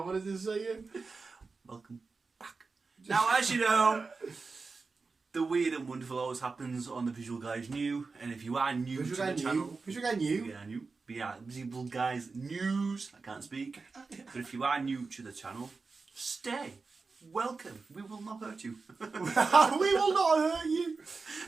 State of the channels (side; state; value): left; quieter; 4.3 dB